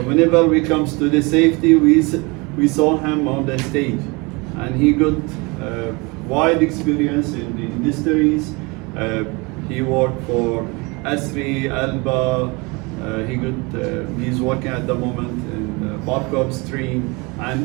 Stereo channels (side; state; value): left; quieter; 27.0 dB